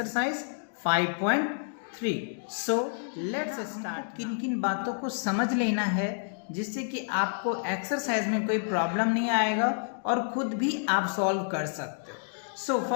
5.3। So let's start. किन किन बातों को समझ लेना है जिससे कि आपको एक्सरसाइज में कोई प्रॉब्लम नहीं आएगा और खुद भी आप सॉल्व कर सकते हो। सो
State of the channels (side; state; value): right; silent; digital silence